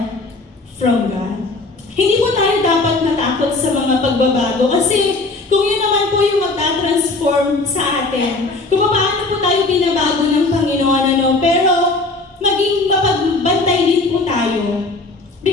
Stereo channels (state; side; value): quieter; right; 3.3 dB